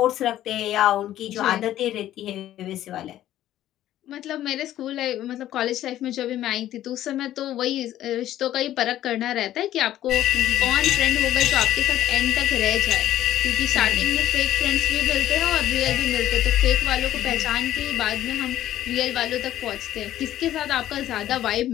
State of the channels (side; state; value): right; quieter; 12.9 dB